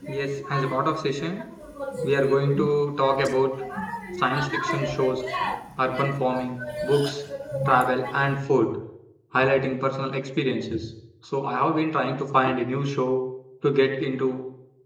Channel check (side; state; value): both; identical; correlation 1.00